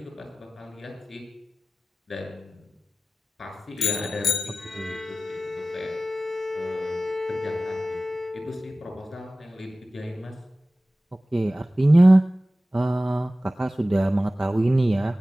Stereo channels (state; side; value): normal; both; correlation 0.96